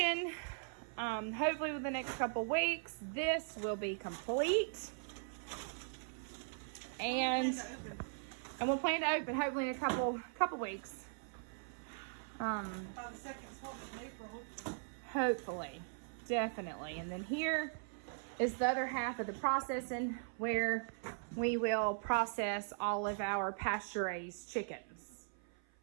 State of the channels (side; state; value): left; silent; 51 dB below the other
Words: Hopefully within the next couple weeks, this will be complete. And we'll plan to open hopefully in a couple weeks. By the second of April. Hopefully, definitely. And then here is the other half of the processing where we will process all of our pasture-raised chickens.